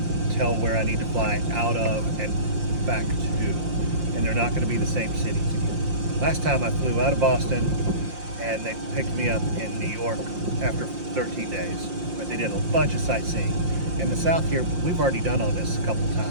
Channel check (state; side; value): late; left; 5.7 ms